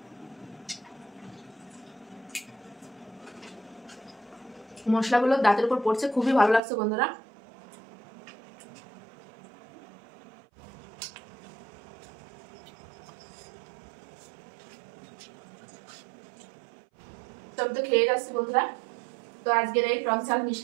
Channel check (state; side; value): drops out; left; at 6.6 s